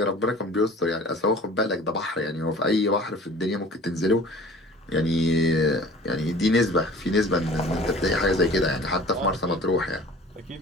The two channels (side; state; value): both; normal; correlation 0.45